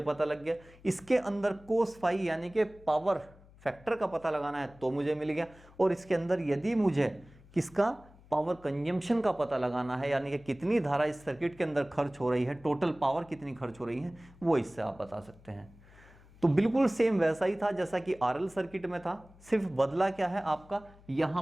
लग गया। इसके अंदर कोस फाई यानी कि पावर फैक्टर का पता लगाना है तो मुझे मिल गया। और इसके अंदर यदि मुझे किसका, पावर कंजम्पशन का पता लगाना है, यानी कि कितनी धारा इस सर्किट के अंदर खर्च हो रही है, टोटल पावर कितनी खर्च हो रही है, वो इससे आप बता सकते हैं। तो बिल्कुल सेम वैसा ही था जैसा कि आरएल सर्किट में था, सिर्फ बदला क्या है आपका, यहां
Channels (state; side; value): noise; left; hum, 24 dB below the sound